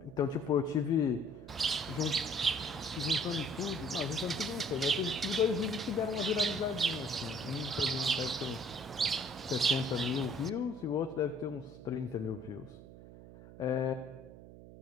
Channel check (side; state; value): right; noise; hum, 17 dB below the sound